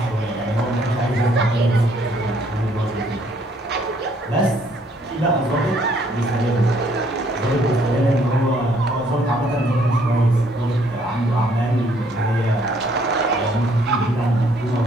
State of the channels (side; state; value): both; normal; correlation 0.65